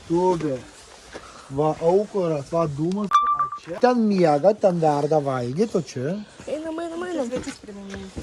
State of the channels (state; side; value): identical; both; correlation 1.00